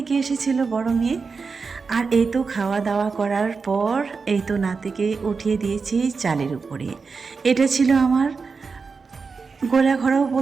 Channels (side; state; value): left; quieter; 4.8 dB